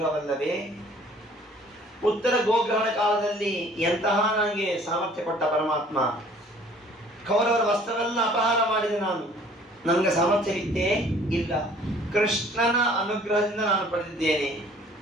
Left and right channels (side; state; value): both; normal; correlation 0.54